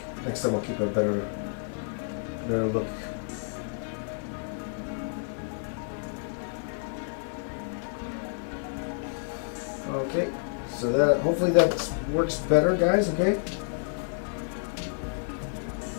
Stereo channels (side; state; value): right; silent; digital silence